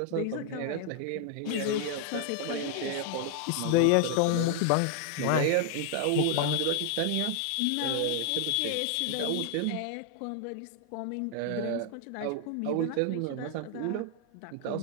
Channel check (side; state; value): both; different; correlation 0.00